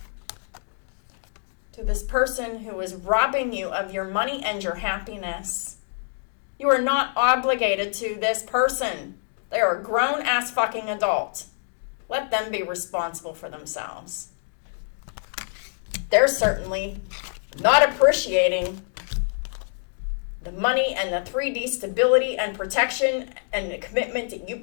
To this person who is robbing you of your money and your happiness. You are not obligated to this person. They are a grown-ass fucking adult. Let them be responsible for themselves. They're certainly not appreciating the money and the 3D stability and protection and the commitment that you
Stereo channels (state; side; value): silent; right; digital silence